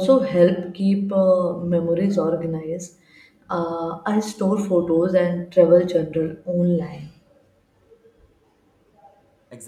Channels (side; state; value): both; identical; correlation 1.00